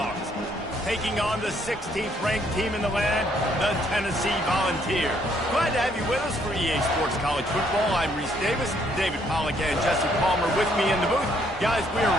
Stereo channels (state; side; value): normal; both; correlation 0.68